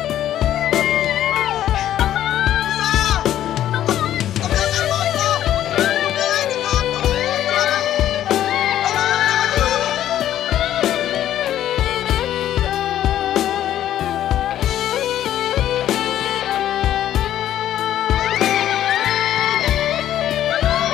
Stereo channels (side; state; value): right; quieter; 11.9 dB